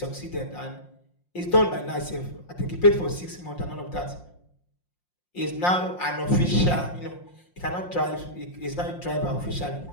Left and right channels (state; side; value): late; right; 5.6 ms